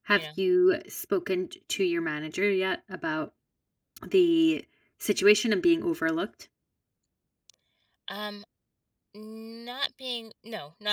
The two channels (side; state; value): both; identical; correlation 1.00